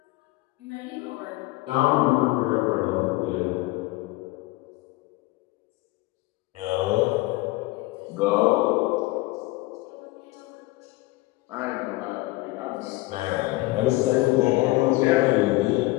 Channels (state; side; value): quieter; right; 20.4 dB